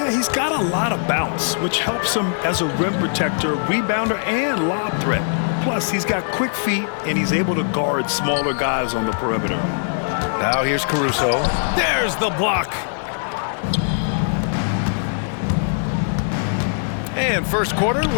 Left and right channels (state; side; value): silent; right; digital silence